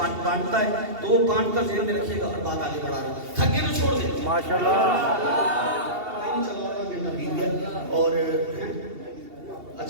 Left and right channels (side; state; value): left; late; 2.7 ms